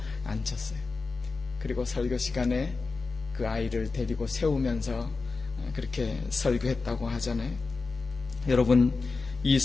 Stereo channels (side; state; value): right; quieter; 4.1 dB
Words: 앉혔어요. 그리고 설교 시간에 그 아이를 데리고 세우면서 그렇게 설교했다고 하잖아요. 여러분, 이